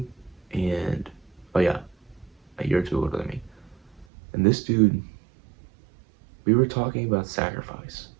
and oh yeah, a year or two older than me. And this dude, we were talking about sacrifice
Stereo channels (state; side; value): drops out; left; at 4.0 s